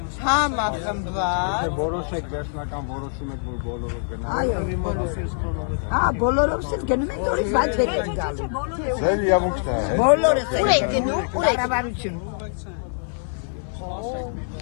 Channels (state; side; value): silent; right; 57 dB below the other